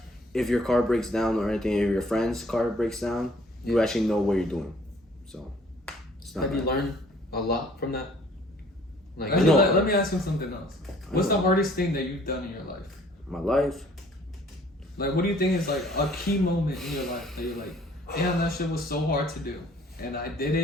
if your car breaks down or anything, if your friend's car breaks down, you actually know what you're doing. So, it's not Have you bad. learned a lot from that? Like, Let me ask you something else. What's the hardest thing that you've done in your life? My life? Like, what do you think is like a key moment in your life that you're like, damn, that shit was so hard to do, and I did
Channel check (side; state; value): both; normal; correlation 0.57